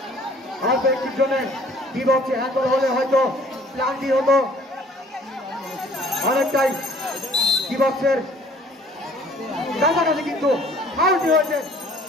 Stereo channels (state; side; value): normal; both; correlation 0.55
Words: অল্প একটির জন্য বিপক্ষে হ্যান্ডবল হলে হয়তো ক্লান্তি হতো, অনেকটাই বিপক্ষের কাছাকাছি কিন্তু ফাউলটি হয়েছে।